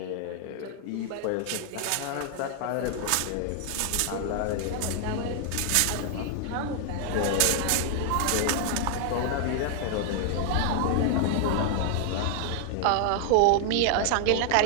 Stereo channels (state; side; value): different; both; correlation 0.00